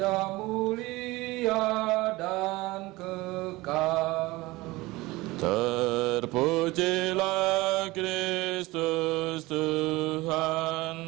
mulia dan kekal. Terpujilah Kristus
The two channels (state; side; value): quieter; left; 20.7 dB